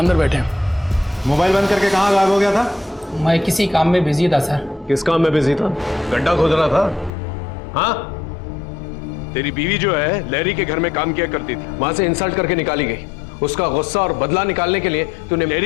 बैठे हैं। मोबाइल बंद करके कहाँ गायब हो गया था? मैं किसी काम में बिजी था सर। किस काम में बिजी था? गड्ढा खोद रहा था? हाँ? तेरी बीवी जो है लैरी के घर में काम किया करती थी, वहां से इंसल्ट करके निकाली गई। उसका गुस्सा और बदला निकालने के लिए तूने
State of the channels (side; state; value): right; drops out; at 7.1 s